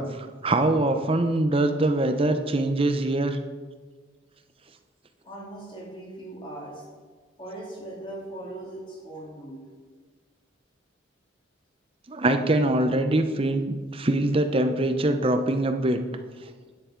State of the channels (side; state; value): both; normal; correlation 0.59